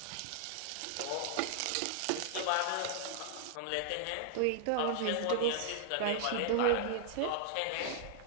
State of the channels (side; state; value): both; different; correlation 0.00